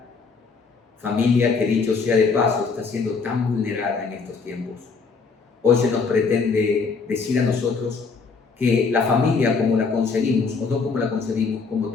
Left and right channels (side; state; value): right; quieter; 4.8 dB